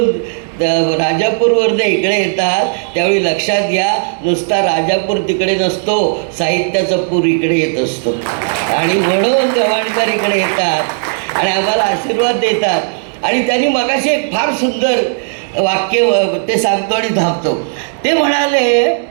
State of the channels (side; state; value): left; silent; digital silence